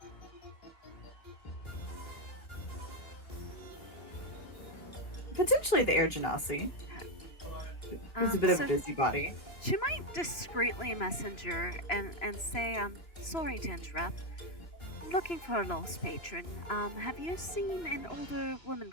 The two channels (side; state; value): right; late; 3.0 ms